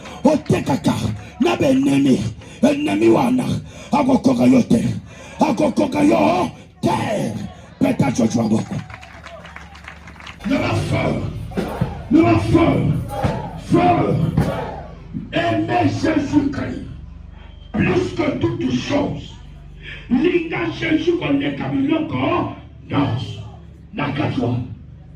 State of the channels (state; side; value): identical; both; correlation 1.00